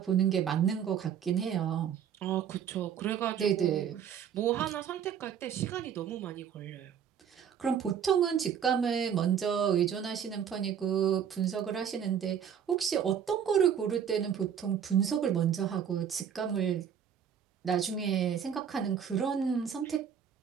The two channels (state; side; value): quieter; left; 8.3 dB